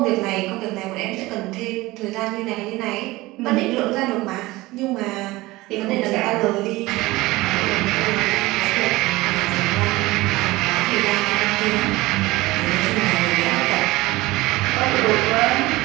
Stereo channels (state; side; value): quieter; left; 19.8 dB